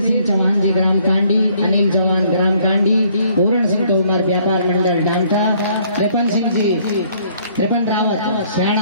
चौहान जी ग्राम कांडी, अनिल चौहान ग्राम कांडी, पूरण सिंह तोमर व्यापार मंडल डामठा, त्रिपन रावत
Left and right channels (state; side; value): inverted; both; correlation -0.63